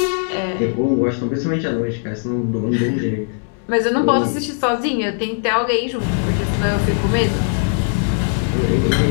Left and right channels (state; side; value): silent; right; 57 dB below the other